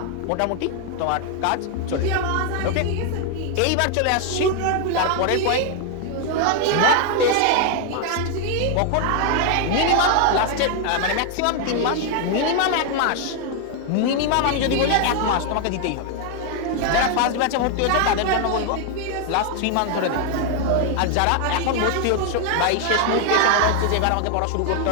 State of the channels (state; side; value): different; both; correlation 0.00